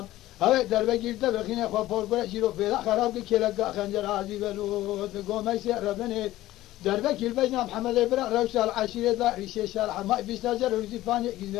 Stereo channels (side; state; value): right; quieter; 15.7 dB